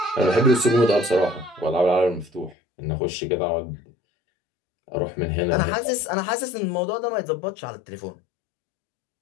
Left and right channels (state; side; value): drops out; right; at 2.6 s